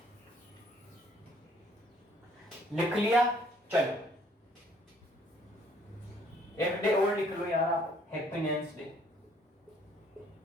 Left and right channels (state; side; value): normal; both; correlation 0.62